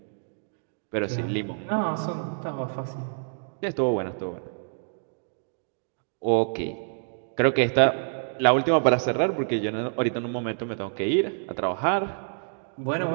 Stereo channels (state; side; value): silent; left; digital silence